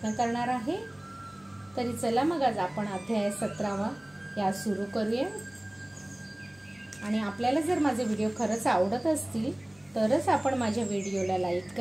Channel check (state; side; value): noise; left; hum, 30 dB below the sound